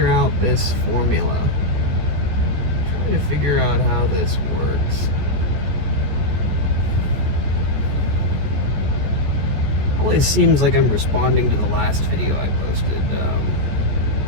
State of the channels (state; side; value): late; left; 14 ms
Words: out this formula. Trying to figure out how this works. Always seems like I'm responding to the last video I posted.